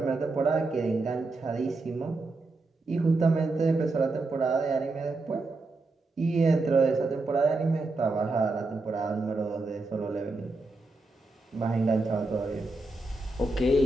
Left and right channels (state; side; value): quieter; left; 3.2 dB